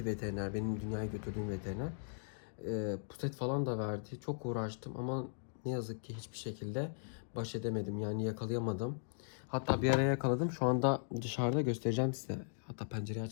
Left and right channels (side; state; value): right; silent; digital silence